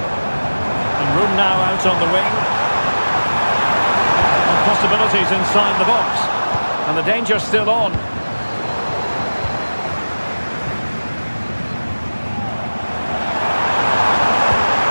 And room now out on the wing. And possibilities inside the box. And the danger's still on.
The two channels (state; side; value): inverted; both; correlation -1.00